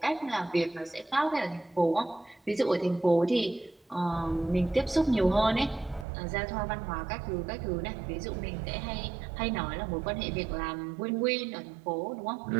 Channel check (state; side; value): drops out; left; at 6.1 s